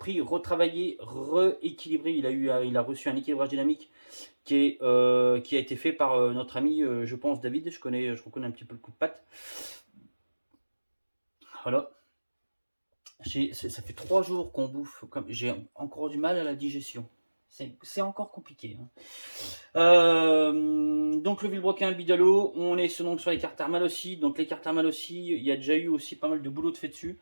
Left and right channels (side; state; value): both; inverted; correlation -1.00